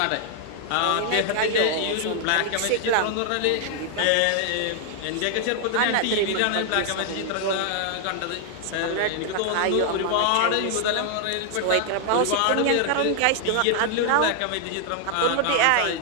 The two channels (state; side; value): different; both; correlation 0.00